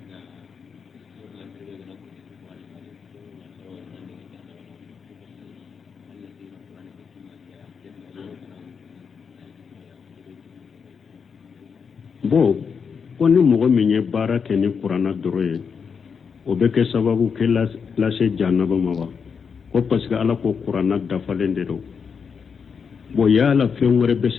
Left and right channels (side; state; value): right; quieter; 6.1 dB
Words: bo koni mogo minye bara ke ni qur'ana doroye o be ke sababu ke la se jannaba mawa ko parce que ala ko qur'ana dafalende do bo yala fengore be